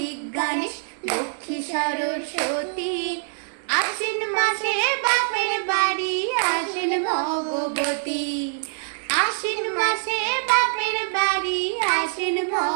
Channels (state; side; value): silent; left; digital silence